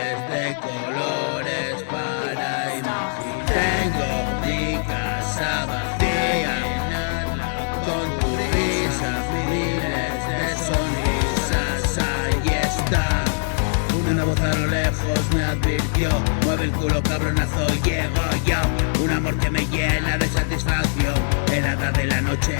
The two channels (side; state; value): right; silent; digital silence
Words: de colores para imaginar. Tengo mi casa vacía, con tu risa, miles de sonrisas, ahí está. Una voz a lo lejos me advirtió, mueve el culo cabronazo, llego yo. Un amor que me llena de satisfacción, helada de la